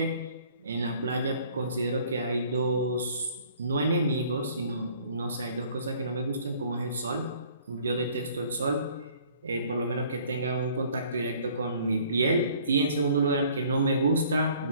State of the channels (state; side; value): inverted; both; correlation -0.56